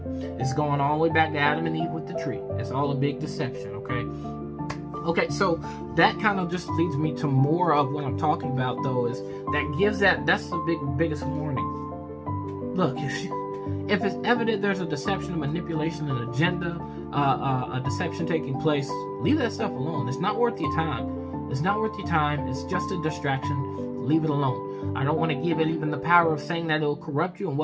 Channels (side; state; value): both; identical; correlation 1.00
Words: It's going all the way back to Adam and Eve with the tree. It's all a big deception, okay, so that kind of just leads me to more of what I'm talking about, though, is that's the biggest warning. Look, if it's evident there's a deception, a manipulation, an agenda, a deception taking place, leave that stuff alone. It's not worth your time. It's not worth your time. It's just a distraction. Leave it alone. I don't want to give it even the power of saying that it'll corrupt you and